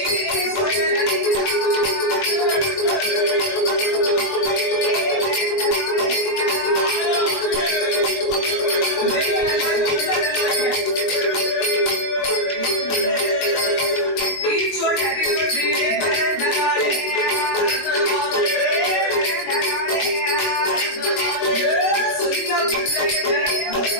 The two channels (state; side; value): late; right; 21 ms